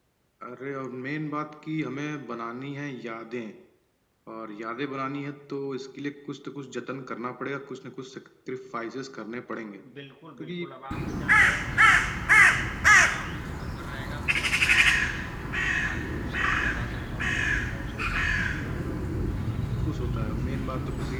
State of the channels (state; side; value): identical; both; correlation 1.00